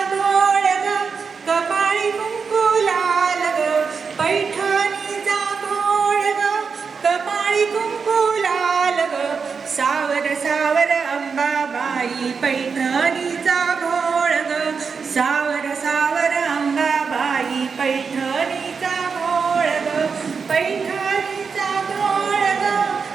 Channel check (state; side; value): quieter; left; 5.5 dB